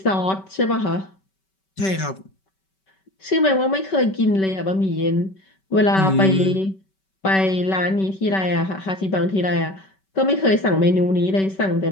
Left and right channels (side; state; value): right; late; 5.2 ms